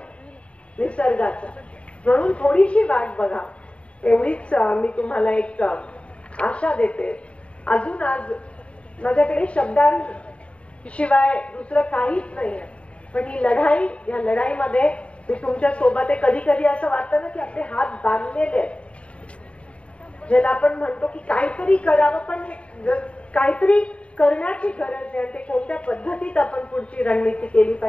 निसर्गाचा. म्हणून थोडीशी वाट बघा, एवढीच मी तुम्हाला एक आशा देते. अजून आज माझ्याकडे शब्दांशिवाय दुसरं काहीच नाही आहे. पण ही लढाई, या लढाईमध्ये मी तुमच्या सोबत आहे. कधी कधी असं वाटतं ना की आपले हात बांधलेले आहेत, ज्याला आपण म्हणतो की काहीतरी करावं, पण काहीतरी करण्याची गरज आहे. ते कोणत्या पद्धतीत आपण पुढची रणनीती केली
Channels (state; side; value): late; right; 0.061 ms